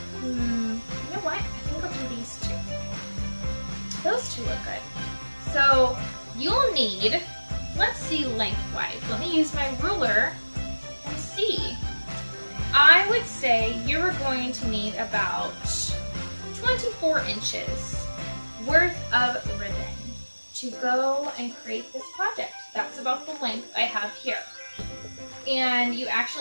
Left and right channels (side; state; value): both; inverted; correlation -1.00